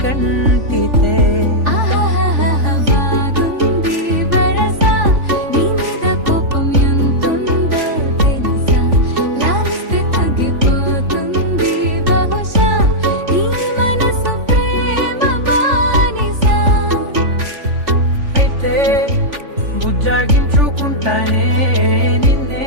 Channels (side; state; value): left; late; 3.5 ms